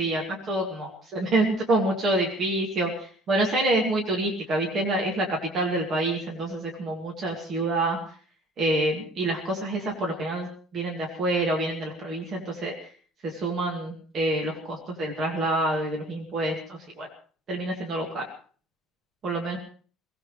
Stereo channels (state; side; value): normal; both; correlation 0.51